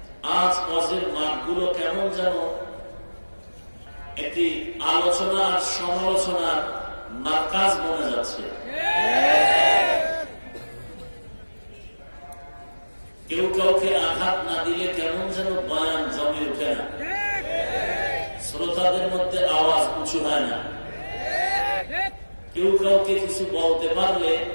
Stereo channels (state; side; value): inverted; both; correlation -1.00